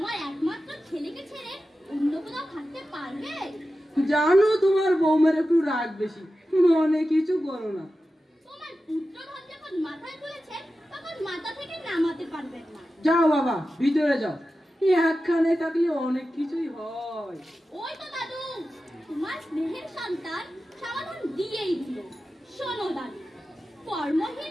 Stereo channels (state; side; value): normal; both; correlation 0.93